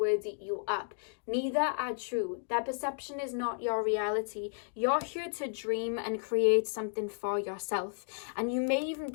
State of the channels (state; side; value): silent; right; digital silence